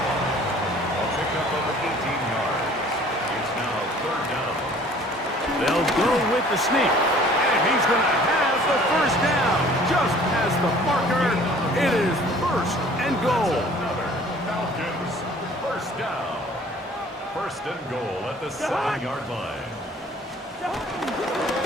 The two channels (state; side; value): normal; both; correlation 0.52